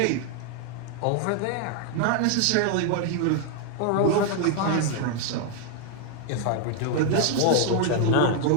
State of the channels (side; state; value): both; different; correlation 0.00